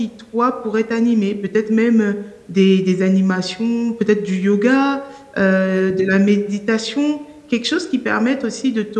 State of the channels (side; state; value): both; identical; correlation 1.00